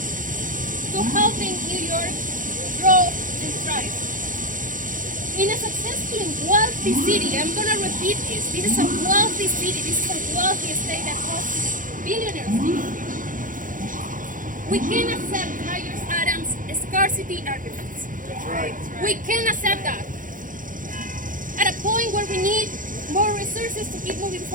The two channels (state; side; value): late; left; 0.39 ms